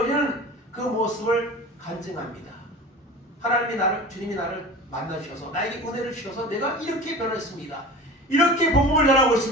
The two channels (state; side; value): normal; both; correlation 0.36